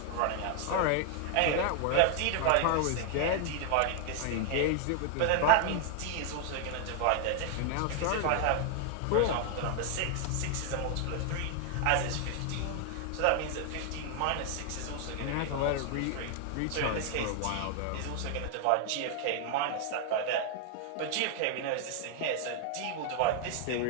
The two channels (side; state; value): both; different; correlation 0.00